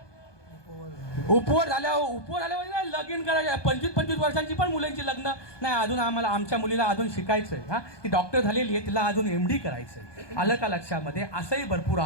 उपवर झाल्यावर लगीन करायचं. 25-25 वर्षांची पण मुलांची लग्न नाही. अजून आमच्या मुलीला अजून शिकायचंय. हा, ती डॉक्टर झालेली आहे, तिला अजून MD करायचंय. आलं का लक्षामध्ये? असंही भरपूर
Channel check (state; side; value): late; right; 1.2 ms